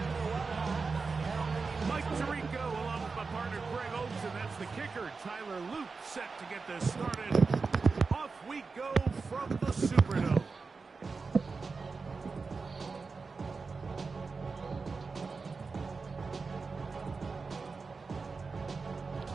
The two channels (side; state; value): left; quieter; 4.5 dB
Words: Tyler Luke set to get this started. Off we go from the Superdome.